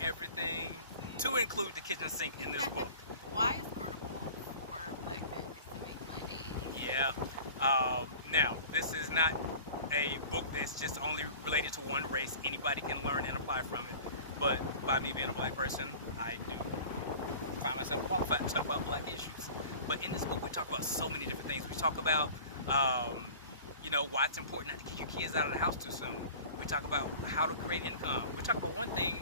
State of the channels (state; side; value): inverted; both; correlation -0.41